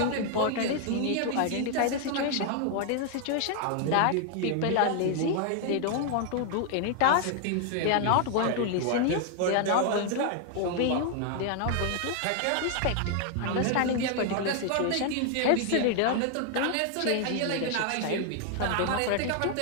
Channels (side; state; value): both; different; correlation 0.00